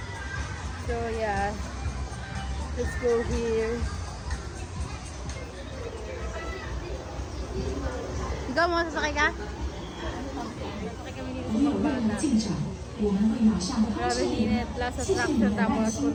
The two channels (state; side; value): identical; both; correlation 1.00